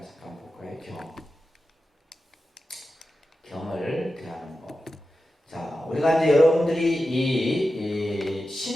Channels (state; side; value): normal; both; correlation 0.92